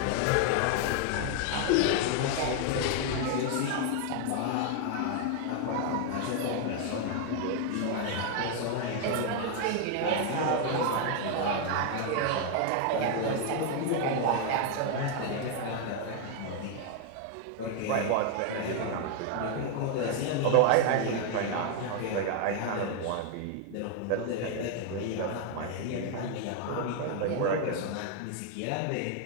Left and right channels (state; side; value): different; both; correlation 0.00